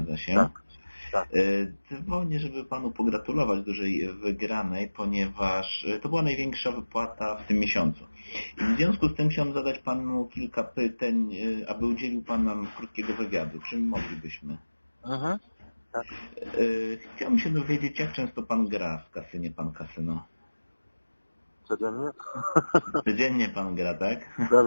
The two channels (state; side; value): inverted; both; correlation -1.00